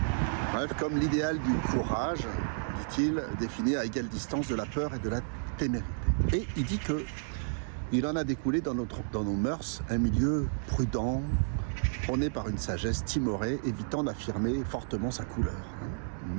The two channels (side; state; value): left; silent; digital silence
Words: Bref, comme l'idéal du courage, dit-il, défini à égale distance de la peur et de la témérité. Et il dit qu'il en a découlé dans nos mœurs un milieu prudent, prôné par une sagesse timorée, évitant d'affirmer fortement sa couleur. Une